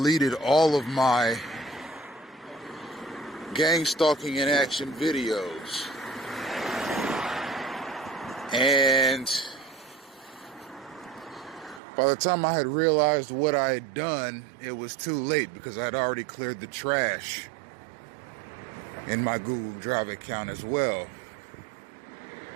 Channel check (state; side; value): drops out; left; at 11.8 s